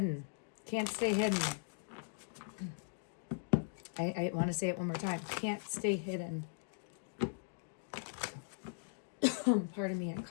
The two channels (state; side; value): silent; right; digital silence